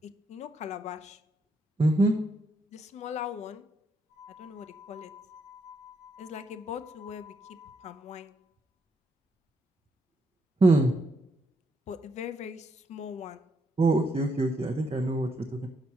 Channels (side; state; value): both; normal; correlation 0.77